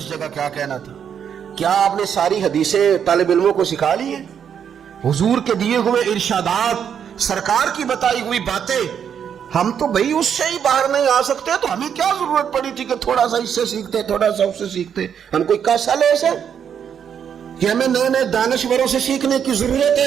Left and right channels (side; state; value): left; quieter; 8.1 dB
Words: جگہ کیا کہنا تھا۔ کیا آپ نے ساری حدیثیں طالب علموں کو سکھا لی ہیں؟ حضور کے دیے ہوئے ارشادات، سرکار کی بتائی ہوئی باتیں، ہم تو بھئی اس سے ہی باہر نہیں آ سکتے، تو ہمیں کیا ضرورت پڑی تھی کہ تھوڑا سا اس سے سیکھتے، تھوڑا سا اس سے سیکھتے؟ ہم کوئی کیسا لے سے کہ ہمیں نئے نئے دانشوروں سے سیکھنے کی ضرورت